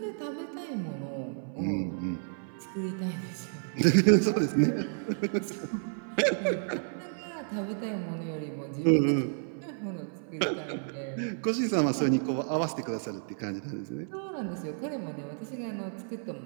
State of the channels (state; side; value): silent; left; 56 dB below the other